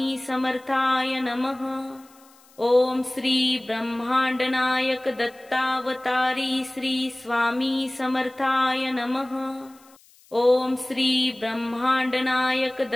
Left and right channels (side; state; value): left; noise; hiss, 28 dB below the sound